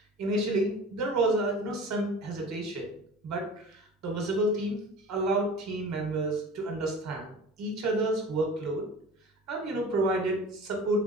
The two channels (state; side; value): normal; both; correlation 0.39